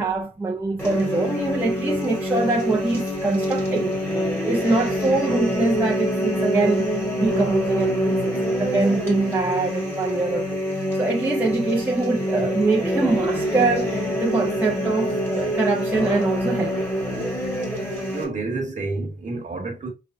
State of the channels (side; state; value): both; normal; correlation 0.71